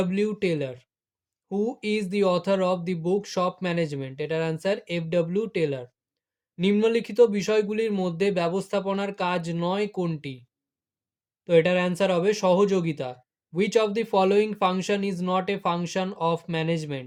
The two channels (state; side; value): identical; both; correlation 1.00